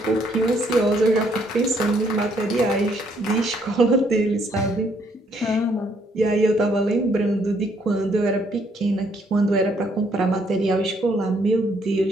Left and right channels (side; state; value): both; normal; correlation 0.68